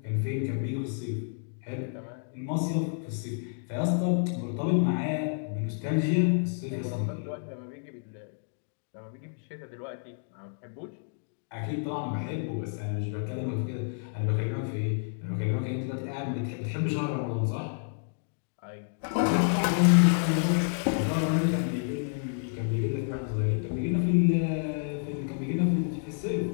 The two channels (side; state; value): right; silent; digital silence